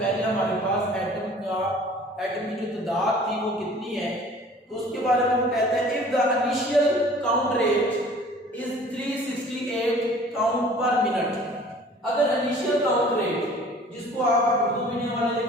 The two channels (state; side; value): normal; both; correlation 0.49